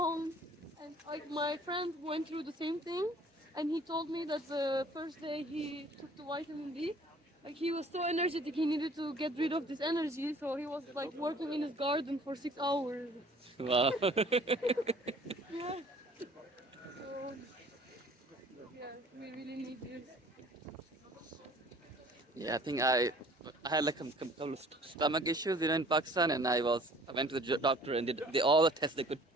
and like my friend went through the same thing, and he told me that the first day he took the vitamin D, like he was so energetic, he needed to get rid of this energy, so he was like working in his garden for 6 hours. Wow. Yeah. So yeah, we really need this. Yeah, I think I had like a couple of stomach issues, in Pakistan, and I went to the doctor and did all the tests they could,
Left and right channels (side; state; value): both; normal; correlation 0.52